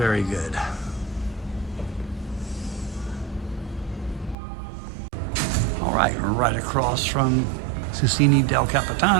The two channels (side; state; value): left; drops out; at 4.4 s